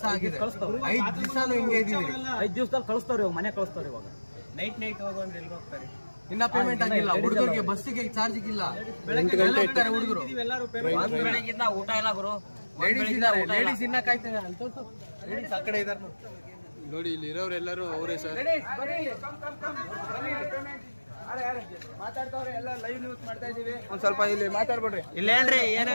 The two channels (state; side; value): inverted; both; correlation -1.00